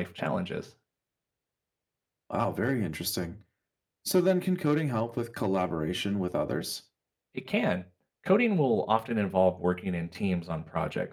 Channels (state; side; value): identical; both; correlation 1.00